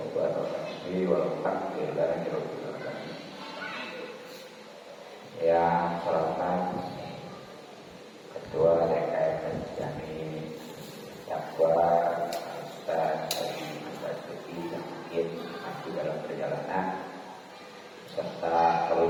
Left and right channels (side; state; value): both; identical; correlation 1.00